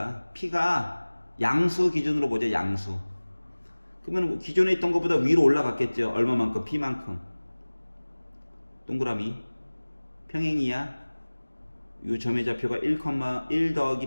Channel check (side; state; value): both; inverted; correlation -1.00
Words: P가 양수 기준으로 보자. 양수. 그러면 기존에 있던 것보다 위로 올라갔겠죠. 얼마만큼? P만큼. 동그라미. 평행이야. 이 점의 좌표가 1